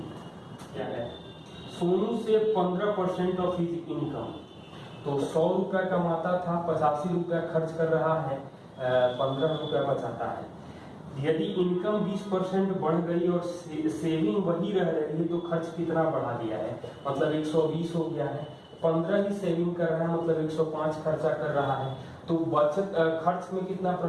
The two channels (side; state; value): both; identical; correlation 1.00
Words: क्या है? सोनू से 15% ऑफ हिज इनकम, तो 100 रुपया कमाता था, 85 रुपया खर्च कर रहा है, 15 रुपया बचाता है। यदि इनकम 20% बढ़ गई और सेविंग वही रह रही है तो खर्च कितना बढ़ा दिया है? मतलब 120 हो गया है, 15 ही सेविंग कर रहा है, मतलब 105 खर्चा कर रहा है, तो बचत खर्च में कितना